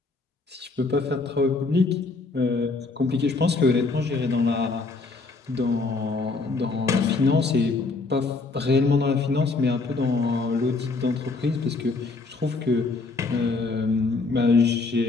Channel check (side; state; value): right; quieter; 3.9 dB